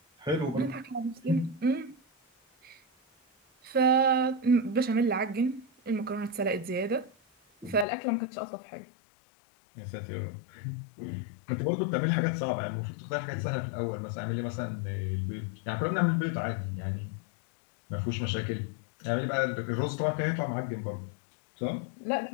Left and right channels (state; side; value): drops out; right; at 7.9 s